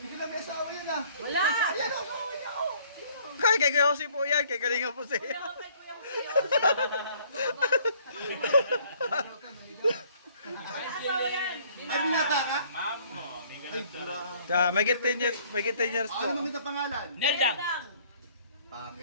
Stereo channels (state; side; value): inverted; both; correlation -0.59